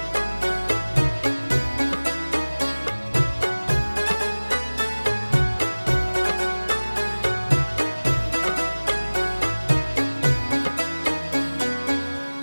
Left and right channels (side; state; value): both; inverted; correlation -1.00